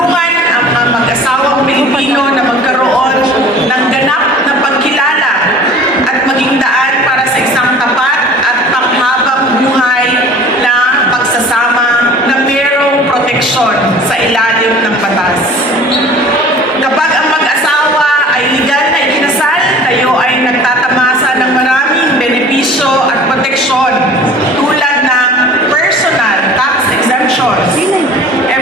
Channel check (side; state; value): both; normal; correlation 0.45